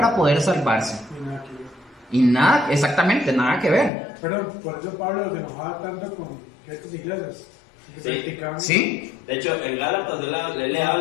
poder salvarse. Y nada, exactamente, nada que ver. Pero por eso Pablo se enojaba tanto con estas iglesias. Sí. De hecho, en Gálatas él le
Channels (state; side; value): drops out; right; at 3.9 s